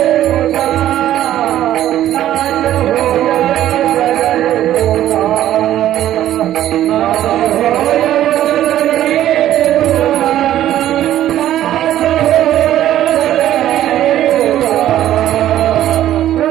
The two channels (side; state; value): left; quieter; 12.6 dB